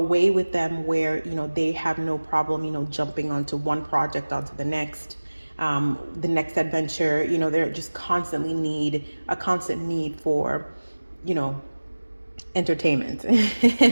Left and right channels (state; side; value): inverted; both; correlation -1.00